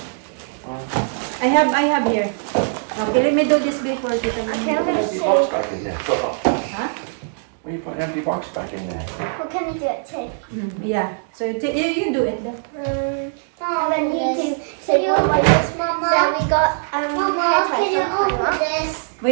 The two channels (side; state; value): left; silent; digital silence